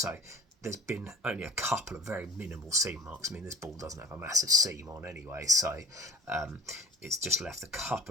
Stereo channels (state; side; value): normal; both; correlation 0.46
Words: there's been only a couple of very minimal seam marks. I mean, this ball doesn't have a massive seam on anyway, so it's just left a